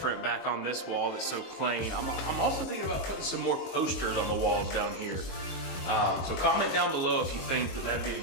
back on this wall that's so plain. I'm also thinking about putting some more posters on the walls down here. So comment down below if you think that that'd be a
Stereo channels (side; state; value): right; late; 22 ms